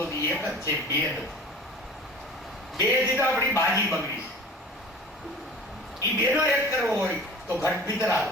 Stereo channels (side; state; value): both; normal; correlation 0.41